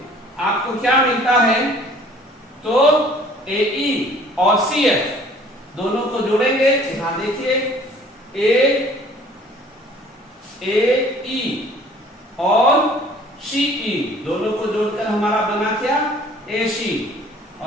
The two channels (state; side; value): normal; both; correlation 0.53